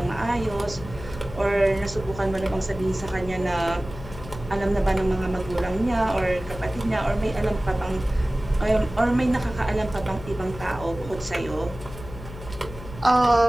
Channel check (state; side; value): noise; left; hum, 13 dB below the sound